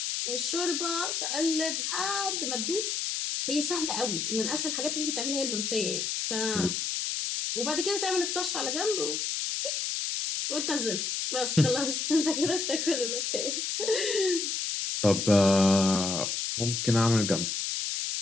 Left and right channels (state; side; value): noise; left; hiss, 1 dB below the sound